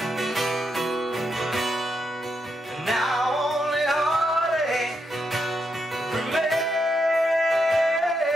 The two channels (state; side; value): normal; both; correlation 0.81